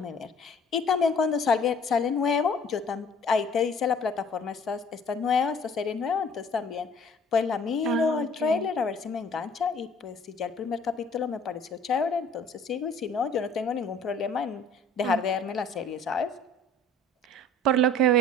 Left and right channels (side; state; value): both; normal; correlation 0.53